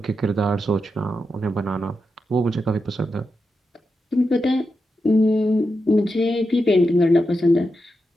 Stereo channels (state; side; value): normal; both; correlation 0.88